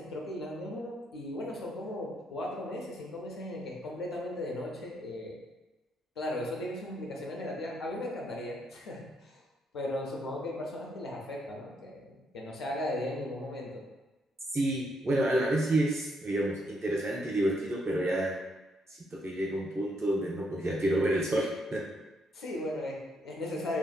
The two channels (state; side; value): normal; both; correlation 0.75